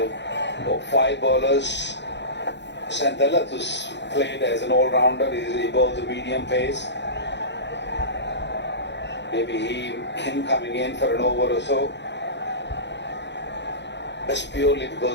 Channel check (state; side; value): late; right; 0.52 ms